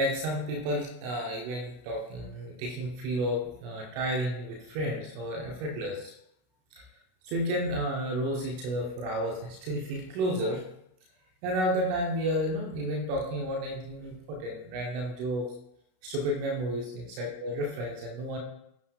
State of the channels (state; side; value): late; left; 32 ms